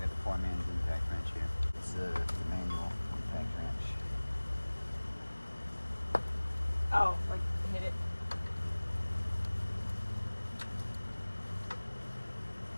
the poor man's impact wrench here. It's the manual impact wrench. Oh, like hit it.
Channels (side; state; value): both; inverted; correlation -1.00